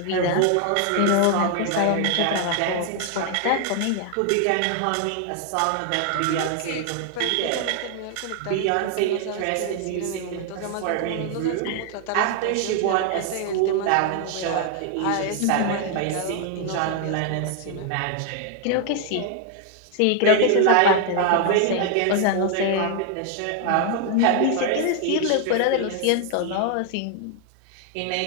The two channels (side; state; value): both; different; correlation 0.00